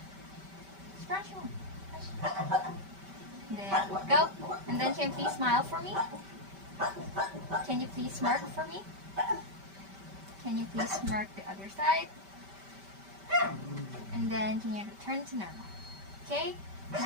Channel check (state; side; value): late; left; 5.1 ms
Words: Scrunch more. There we go. And then can you please smile for me? Can you please smirk for me? Can you please smirk the other side? And then can you return to normal? Okay,